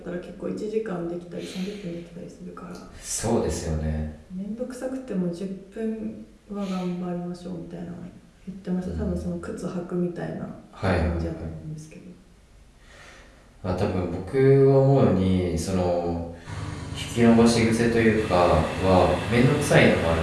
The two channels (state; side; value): identical; both; correlation 1.00